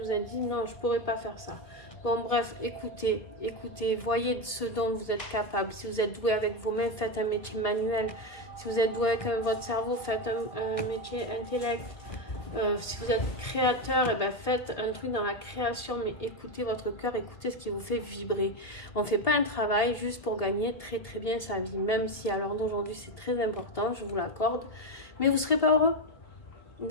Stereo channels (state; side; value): late; right; 1.8 ms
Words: vous avez dit, non, je ne pourrais pas faire ça. Bon, bref, écoutez, voyez ce dont vous êtes capable. Si vous êtes doué avec vos mains, faites un métier manuel. Si vous êtes doué avec votre cerveau, faites un métier intellect. Si vous êtes créateur, eh ben faites un truc dans la création, mais écoutez votre cœur, écoutez ce qui vous fait vibrer. On ne fait pas un travail juste pour gagner très très bien sa vie, même si à l'heure d'aujourd'hui c'est très important, je vous l'accorde, mais vous ne serez pas heureux.